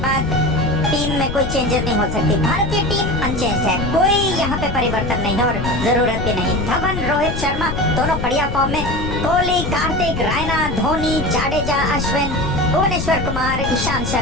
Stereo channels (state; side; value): noise; left; rumble, 4 dB below the sound